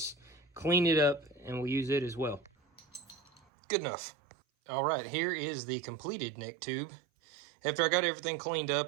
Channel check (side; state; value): left; drops out; at 3.4 s